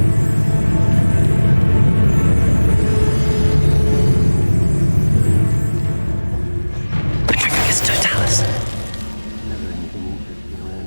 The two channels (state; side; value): inverted; both; correlation -1.00